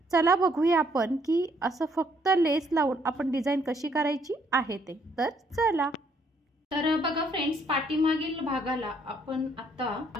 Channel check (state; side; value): normal; both; correlation 0.68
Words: चला बघूया आपण की असं फक्त लेस लावून आपण डिझाईन कशी करायची आहे ते. तर चला. तर बघा फ्रेंड्स, पाठीमागील भागाला आपण आता